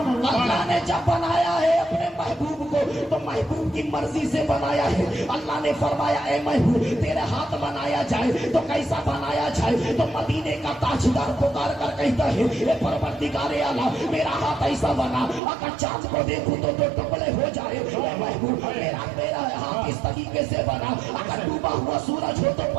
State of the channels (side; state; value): left; drops out; at 15.4 s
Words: ने जब बनाया है अपने महबूब को तो महबूब की मर्जी से बनाया है। अल्लाह ने फरमाया ए महबूब तेरे हाथ बनाया जाए तो कैसा बनाया जाए, तो मदीने का ताजदार पुकार कर कहता है ए परवरदिगारे आला मेरा हाथ ऐसा बना अगर चांद को देखूं तो दो टुकड़े हो जाए। ए महबूब मेरा हाथ इस तरीके से बना अगर डूबा हुआ सूरज हो तो